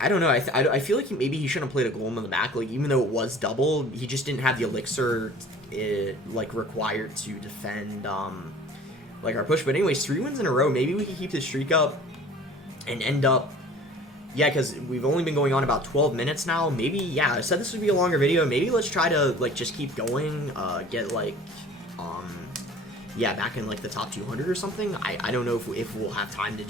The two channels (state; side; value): normal; both; correlation 0.46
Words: I don't know, I feel like maybe he shouldn't have played a Golem in the back. Like, even though it was double, he just didn't have the Elixir, like, required to defend, like, our push. But anyways, 3 wins in a row. Maybe we can keep this streak up and end up, yeah, because we've only been going on about 12 minutes now. Maybe, yeah, I said this would be a longer video. Maybe let's try to, like, just keep going, get, like, yeah, back in, like, the top 200 or something. I don't know if we'll have time to